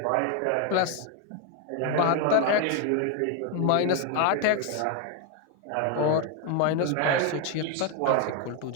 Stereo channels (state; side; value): different; both; correlation 0.01